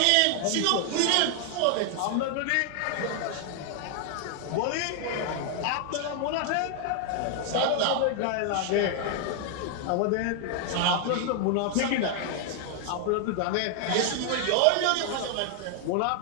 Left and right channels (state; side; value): different; both; correlation 0.00